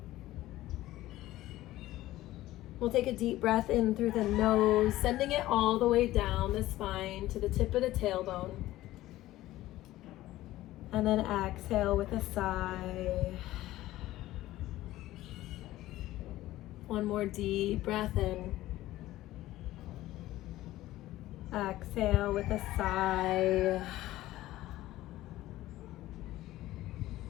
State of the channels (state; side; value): quieter; right; 15.8 dB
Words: We'll take a deep breath in through the nose, sending it all the way down the spine to the tip of the tailbone. And then exhale with a sigh. One more deep breath in. Exhale with a sigh.